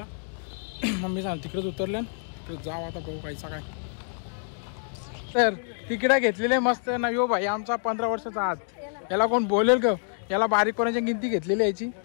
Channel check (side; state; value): right; silent; digital silence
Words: मम्मी सांग तिकडेच उतरले तिकडे जाऊ आता बघू कायचा काय. तर तिकीट घेतलेले मस्त ना. यो भाई आमचा 15 वर्षाचा आत. याला कोण बोलेल का? याला बारीक कोणाची गिनती घेतलेली याची.